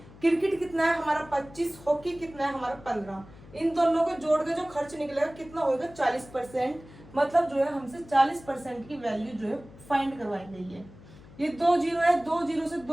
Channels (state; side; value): noise; left; hum, 20 dB below the sound